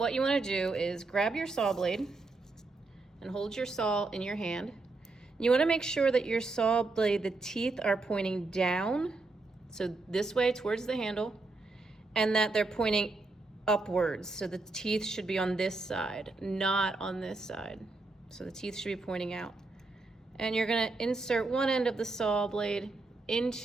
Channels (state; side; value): quieter; left; 3.5 dB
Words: you want to do is grab your saw blade and hold your saw in your hand. You want to make sure that your saw blade, the teeth are pointing down, so this way towards the handle, and that they're pointing upwards. So the teeth should be on this side, not on this side. So the teeth should be pointing out. And you're going to insert one end of the saw blade